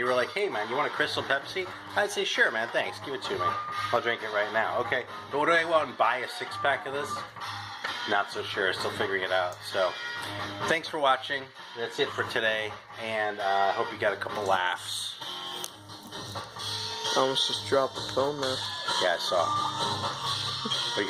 were like, hey man, you want a Crystal Pepsi? I'd say, sure man, thanks, give it to me. I'll drink it right now. Okay, but would I go out and buy a 6-pack of this? Not so sure, still figuring it out. So, thanks for watching. That's it for today, and I hope you got a couple laughs. I almost just dropped the phone there. Yeah, I saw. Are you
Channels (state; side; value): identical; both; correlation 1.00